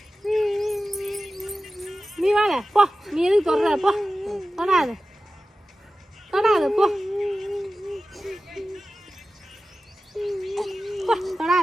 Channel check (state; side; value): normal; both; correlation 0.95